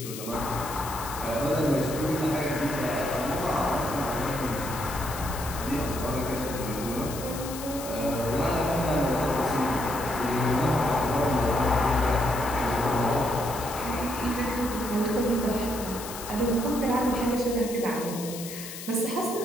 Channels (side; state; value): left; noise; hiss, 10 dB below the sound